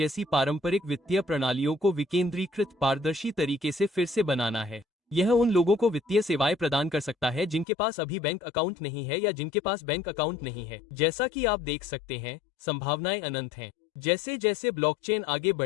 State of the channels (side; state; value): right; drops out; at 7.7 s